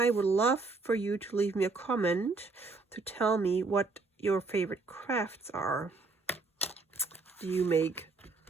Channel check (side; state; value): left; quieter; 3.9 dB